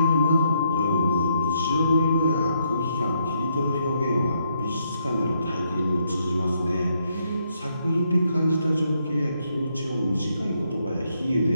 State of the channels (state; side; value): inverted; both; correlation -0.76